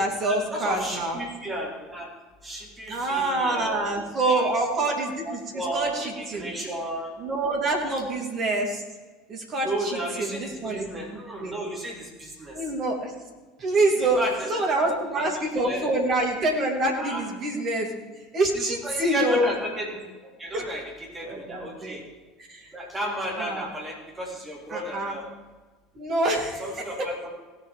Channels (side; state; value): both; normal; correlation 0.43